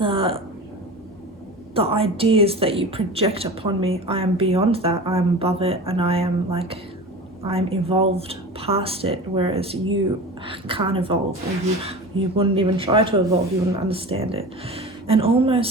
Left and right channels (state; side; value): normal; both; correlation 0.33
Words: ideas that you project upon me. I am beyond that. I am above it, and I'm evolved past it, whereas you can't evolve, or you wouldn't even try to evolve. You wouldn't understand it. And